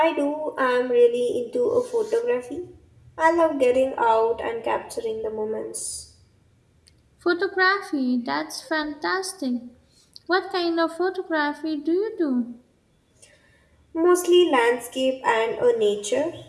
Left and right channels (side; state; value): both; identical; correlation 1.00